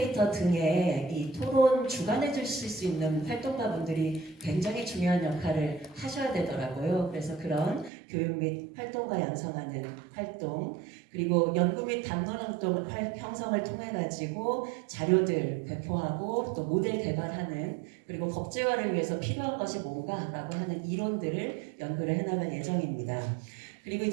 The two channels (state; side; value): drops out; left; at 7.9 s